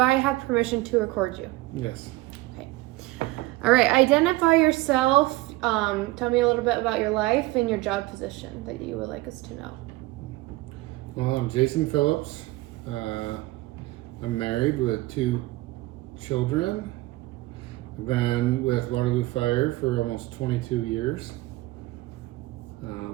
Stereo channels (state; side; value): quieter; left; 19.8 dB